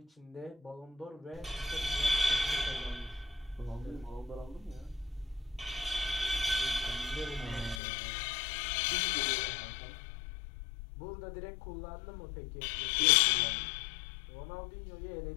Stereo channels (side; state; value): right; drops out; at 7.8 s